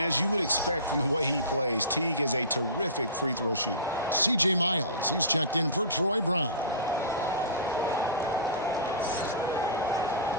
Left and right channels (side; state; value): both; inverted; correlation -0.33